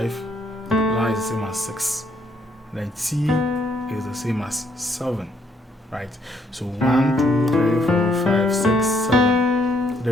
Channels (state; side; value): normal; both; correlation 0.70